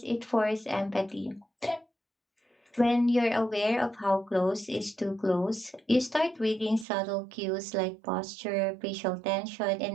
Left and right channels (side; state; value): left; drops out; at 6.9 s